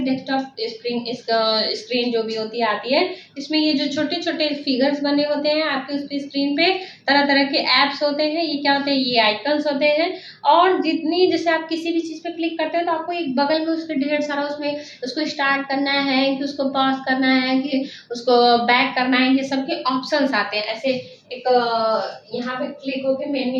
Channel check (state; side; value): identical; both; correlation 1.00